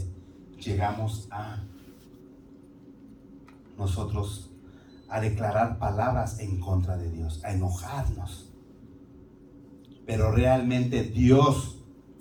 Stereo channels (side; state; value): both; identical; correlation 1.00